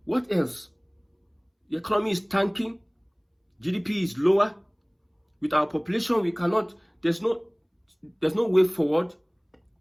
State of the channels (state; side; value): identical; both; correlation 1.00